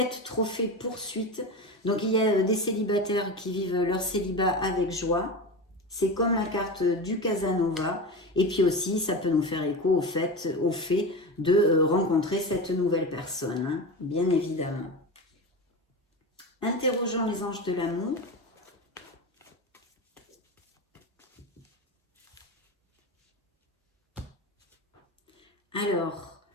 trophée, poursuite. Donc il y a des célibataires qui vivent leur célibat avec joie. C'est comme la carte du Casanova. Et puis aussi, ça peut nous faire écho au fait de rencontrer cette nouvelle personne, hein, bien évidemment. Interrogeons les anges de l'amour. Alors,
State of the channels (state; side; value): normal; both; correlation 0.25